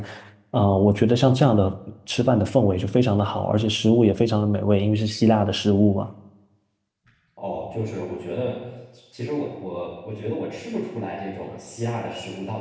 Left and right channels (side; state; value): both; identical; correlation 1.00